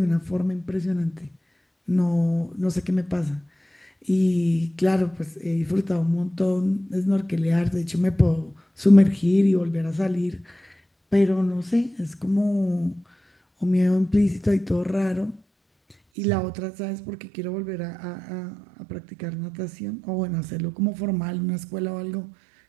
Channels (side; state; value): left; drops out; at 16.0 s